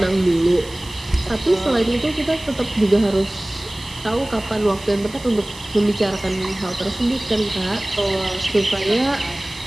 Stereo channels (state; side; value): noise; right; hiss, 19 dB below the sound